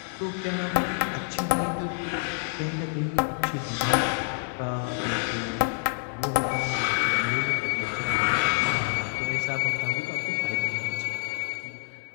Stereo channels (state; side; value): silent; right; 60 dB below the other